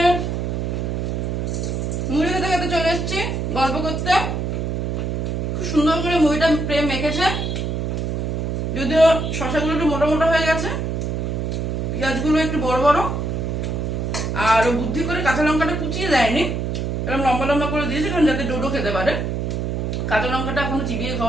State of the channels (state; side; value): noise; right; hum, 1 dB below the sound